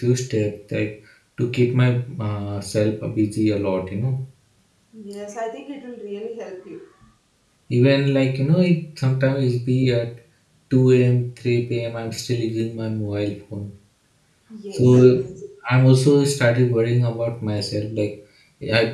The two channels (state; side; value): identical; both; correlation 1.00